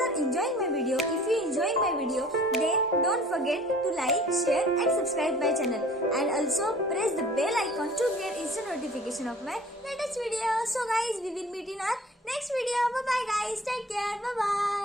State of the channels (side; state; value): both; normal; correlation 0.48